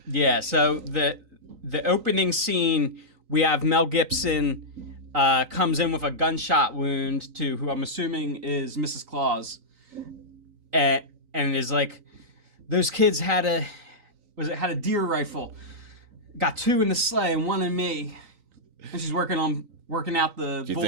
Yeah. So the opening scene, we have Mel Gibson comes in with a gunshot wound to who I'm assuming is Mrs. Claus, and is like, those kids had a deer rifle, got 2 in the sleigh and 1 in me, and she's working out the Do you bullet.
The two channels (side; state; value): left; late; 3.9 ms